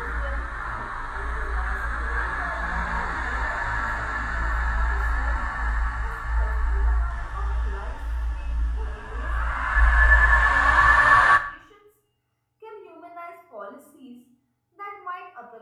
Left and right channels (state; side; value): identical; both; correlation 1.00